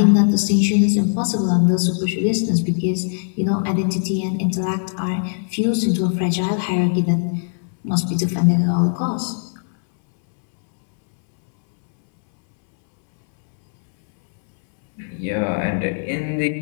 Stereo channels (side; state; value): right; silent; 66 dB below the other